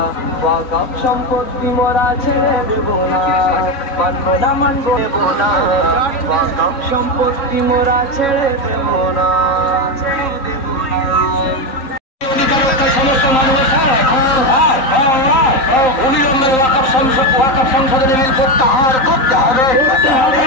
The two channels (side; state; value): right; late; 3.9 ms